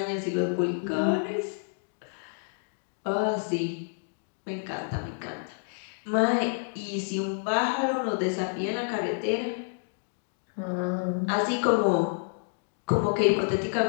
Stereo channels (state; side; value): silent; right; digital silence